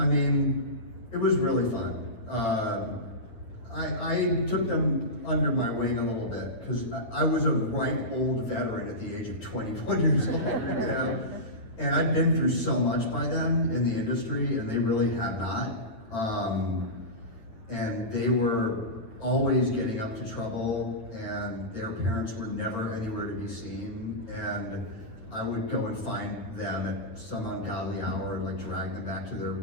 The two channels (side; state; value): right; late; 9.1 ms